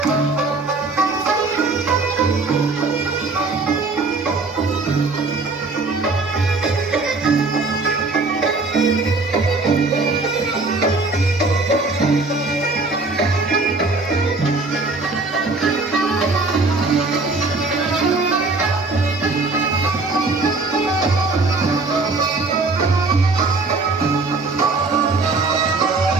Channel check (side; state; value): left; quieter; 3.7 dB